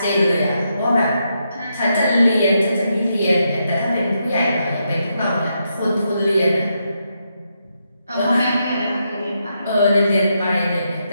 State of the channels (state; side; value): inverted; both; correlation -0.82